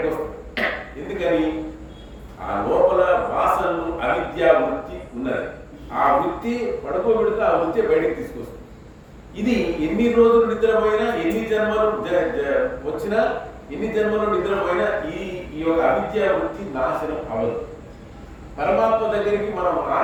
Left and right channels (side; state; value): both; identical; correlation 1.00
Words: వస్తాడు. ఎందుకని? ఆ లోపల వాసనలు, అవిద్యా వృత్తి ఉన్నది. ఆ వృత్తి పడుకోబెడితే ఆ వృత్తి బయటకు తీసుకొస్తుంది. ఇది ఎన్ని రోజులు నిద్రపోయినా, ఎన్ని జన్మలు వచ్చినా, ఎన్ని జన్మలు నిద్రపోయినా ఈ యొక్క అవిద్యా వృత్తి నాశనం అవ్వదు. పరమాత్మ దగ్గరికి మనం